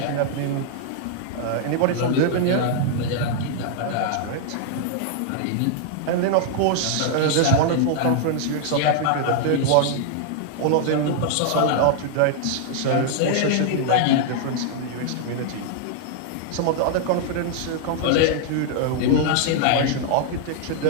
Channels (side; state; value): both; different; correlation 0.00